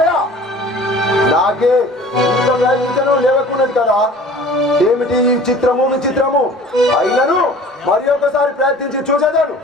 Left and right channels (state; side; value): normal; both; correlation 0.46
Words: నాకే ఇంత ప్రయత్నించడం లేవకున్నది కదా. ఏమిటి ఈ చిత్రము విచిత్రము! అయినను మరి ఒకసారి ప్రయత్నించి చూసేదాను.